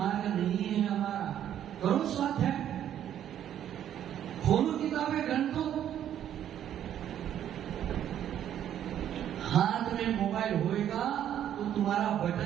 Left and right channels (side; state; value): left; quieter; 10.5 dB